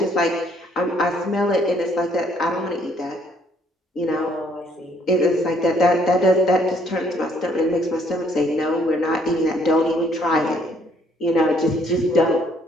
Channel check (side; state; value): both; normal; correlation 0.65